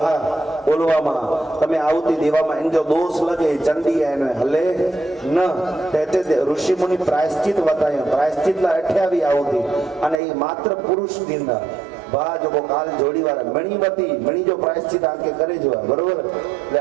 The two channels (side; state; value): left; drops out; at 10.2 s